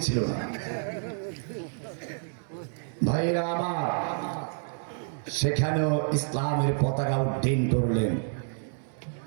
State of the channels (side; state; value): left; silent; 56 dB below the other